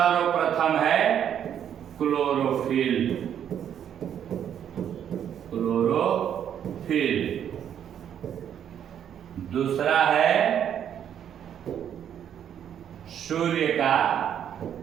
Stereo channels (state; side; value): quieter; left; 9.3 dB